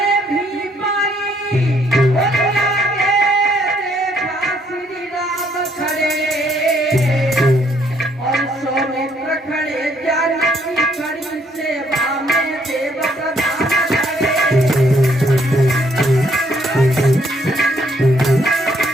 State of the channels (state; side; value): normal; both; correlation 0.69